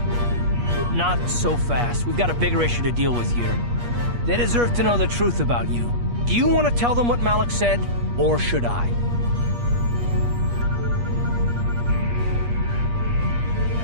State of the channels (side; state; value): left; late; 8.4 ms